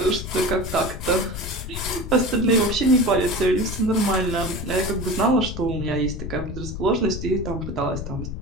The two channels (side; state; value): left; noise; rumble, 7 dB below the sound